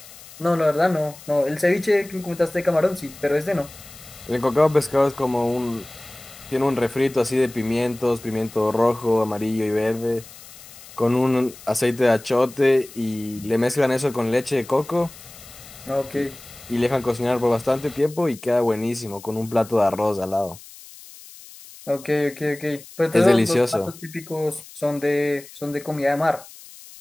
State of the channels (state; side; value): noise; left; hiss, 19 dB below the sound